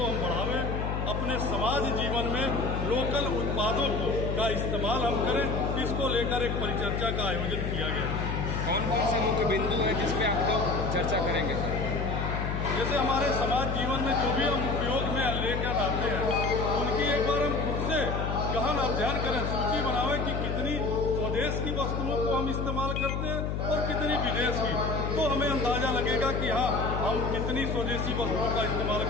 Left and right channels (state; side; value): noise; left; hum, 1 dB below the sound